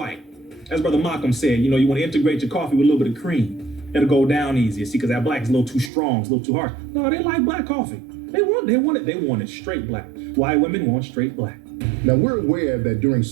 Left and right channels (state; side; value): drops out; left; at 5.9 s